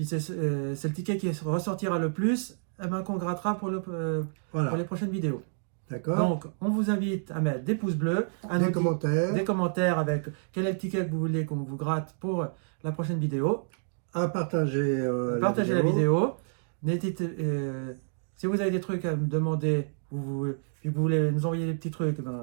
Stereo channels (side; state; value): left; silent; digital silence